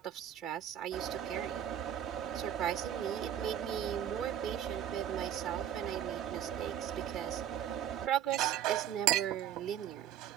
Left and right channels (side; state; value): left; quieter; 10.4 dB